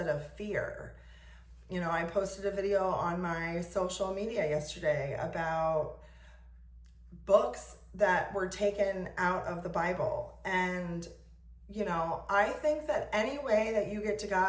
of fear. I posted a video on my social media yesterday about books that were taken out of the Bible. And I think that any way that you get to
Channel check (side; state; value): both; identical; correlation 1.00